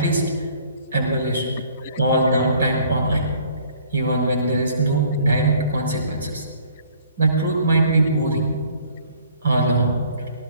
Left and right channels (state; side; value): inverted; both; correlation -0.57